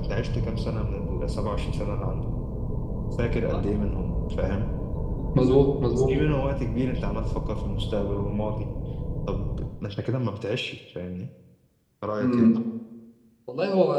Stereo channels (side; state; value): both; identical; correlation 1.00